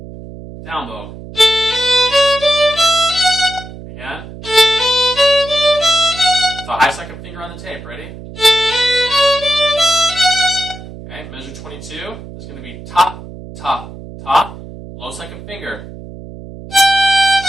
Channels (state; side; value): noise; right; hum, 14 dB below the sound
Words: Down bow. Again. With a high second finger on the tape. Ready? Okay, measure 22 is going to be ta, ta, ta. Low second finger.